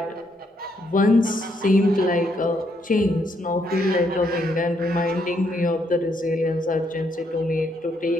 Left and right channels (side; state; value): both; normal; correlation 0.74